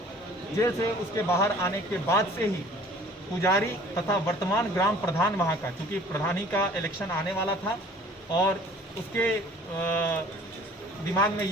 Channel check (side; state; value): both; normal; correlation 0.51